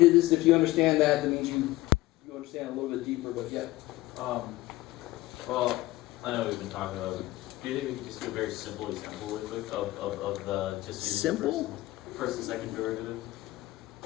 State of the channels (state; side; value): quieter; right; 17.9 dB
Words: is, if you understand that, that means you understand a little bit deeper, but yeah. Well, I know we've been talking about it. Do you think we can just do a very simple example real quick of the just using Simple? first and second derivative?